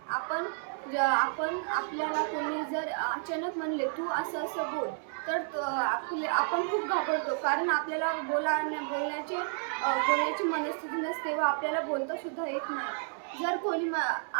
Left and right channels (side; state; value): left; silent; 57 dB below the other